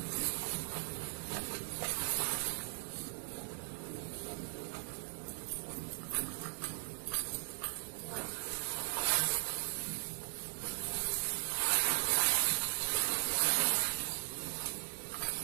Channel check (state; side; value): silent; left; 52 dB below the other